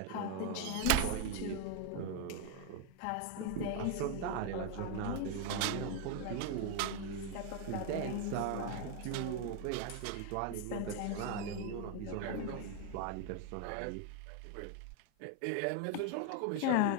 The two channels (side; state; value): both; different; correlation 0.01